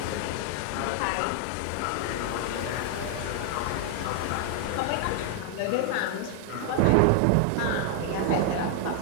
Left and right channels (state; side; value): different; both; correlation 0.00